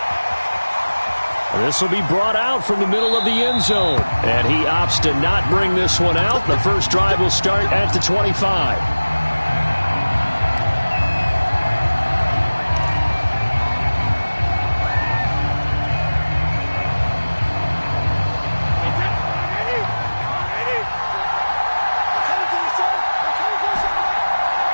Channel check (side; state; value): both; inverted; correlation -1.00